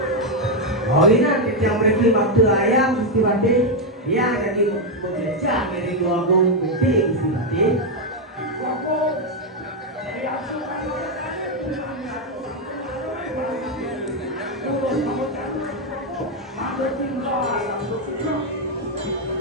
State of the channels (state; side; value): normal; both; correlation 0.03